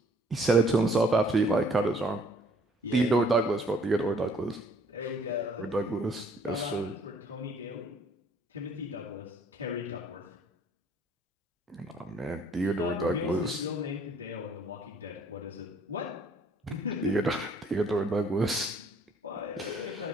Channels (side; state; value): both; normal; correlation 0.60